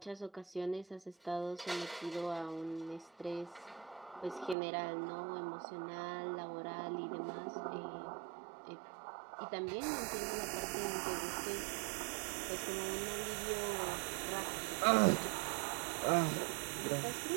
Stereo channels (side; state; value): left; drops out; at 4.5 s